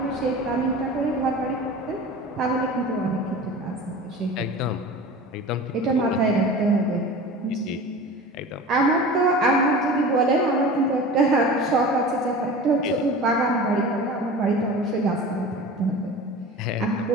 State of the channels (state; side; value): normal; both; correlation 0.36